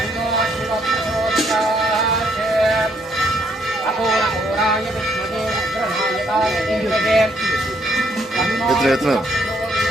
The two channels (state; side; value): normal; both; correlation 0.70